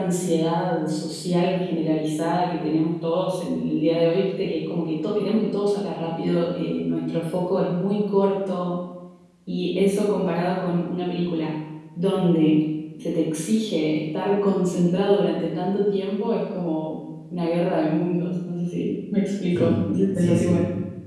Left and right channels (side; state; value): both; identical; correlation 1.00